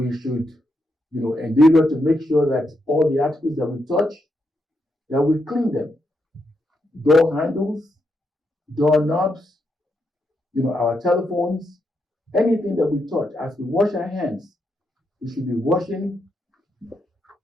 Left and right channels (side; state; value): both; normal; correlation 0.81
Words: should, endeavor to make sure that all the articles that we touch, that we clean them. Door handles, door knobs, our telephones, anything that we touch. As we wash our hands, we should be